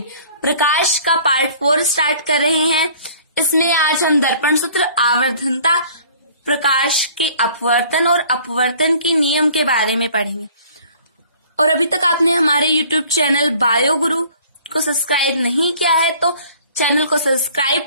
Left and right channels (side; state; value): both; inverted; correlation -0.52